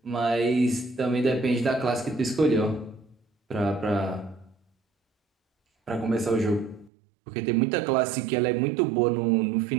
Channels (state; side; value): drops out; left; at 6.9 s